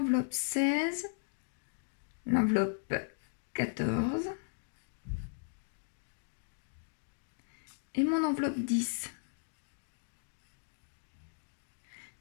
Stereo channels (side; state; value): right; silent; digital silence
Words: 16, l'enveloppe 14 et mon enveloppe 10.